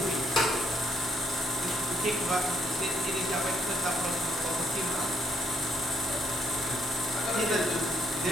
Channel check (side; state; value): both; normal; correlation 0.72